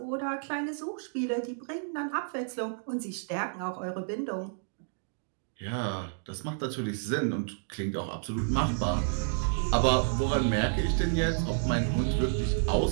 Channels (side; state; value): left; silent; digital silence